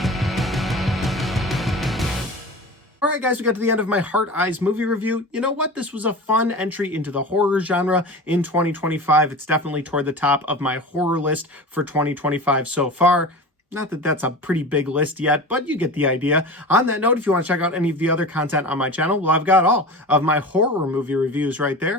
Alright guys, we got to the end of my Hard Eyes movie review. You know what? This was a fun entry into the horror genre in 2025. It's definitely toward the top of my horror list for 2025 so far. Not that that's a pretty big list yet, but you get the idea. On that note, if you want to check out any of the other content on my channel, well, I've got all of my horror movie reviews right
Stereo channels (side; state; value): both; normal; correlation 0.32